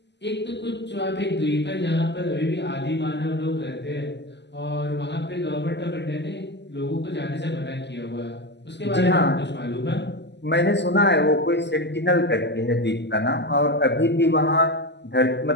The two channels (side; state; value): right; late; 0.50 ms